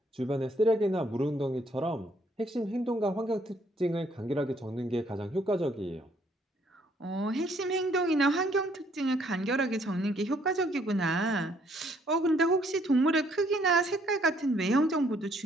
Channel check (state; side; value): normal; both; correlation 0.66